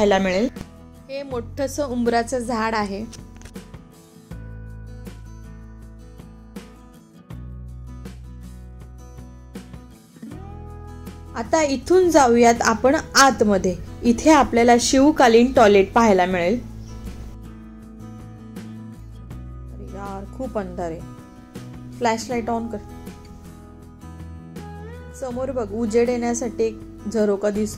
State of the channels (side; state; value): both; identical; correlation 1.00